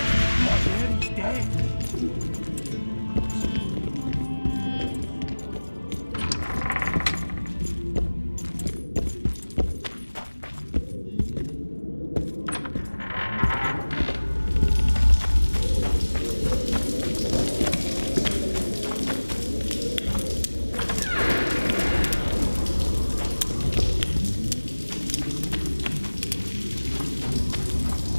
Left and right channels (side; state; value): both; inverted; correlation -1.00